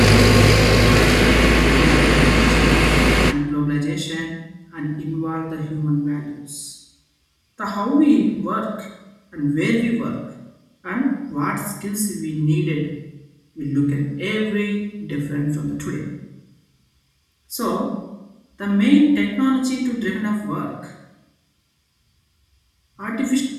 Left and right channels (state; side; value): identical; both; correlation 1.00